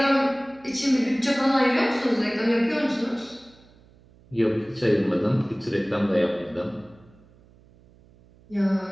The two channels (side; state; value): right; noise; hum, 28 dB below the sound